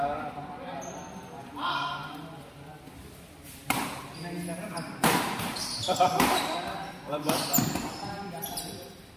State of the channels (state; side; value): identical; both; correlation 1.00